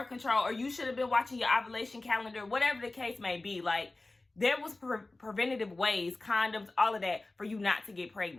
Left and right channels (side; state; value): right; quieter; 3.0 dB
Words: control, or you should have been watching your ovulation calendar, whatever the case may be. Like, there was preventative ways, condoms, all of that, for you not to get